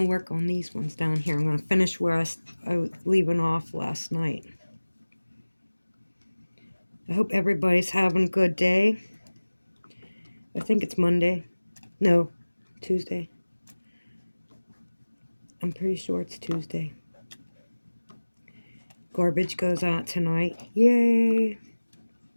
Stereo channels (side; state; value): both; inverted; correlation -1.00